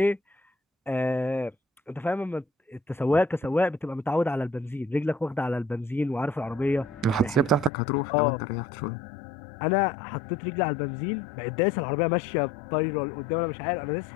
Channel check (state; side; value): drops out; right; at 7.7 s